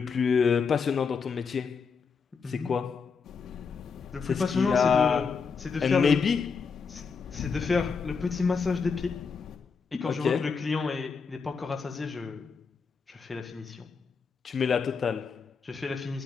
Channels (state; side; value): quieter; right; 5.5 dB